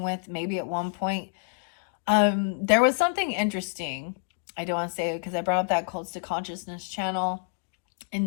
with maybe at one point. There was something interesting. I don't want to say it because I brought up that Cults to Consciousness channel,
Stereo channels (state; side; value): silent; right; digital silence